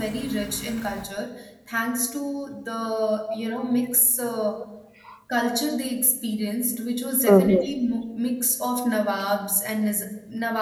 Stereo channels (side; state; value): both; identical; correlation 1.00